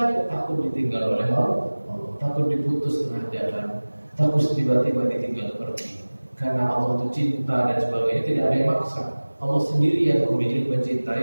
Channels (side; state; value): both; inverted; correlation -1.00